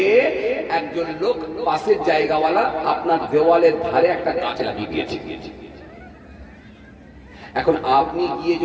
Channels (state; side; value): identical; both; correlation 1.00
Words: একজন লোক, পাশের জায়গাওয়ালা, আপনার দেওয়ালের ধারে একটা গাছ লাগিয়ে দিয়েছে। এখন আপনি গিয়ে